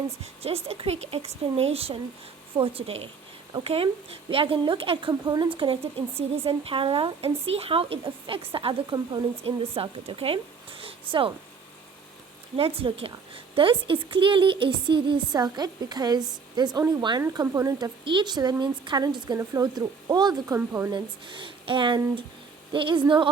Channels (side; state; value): left; quieter; 5.3 dB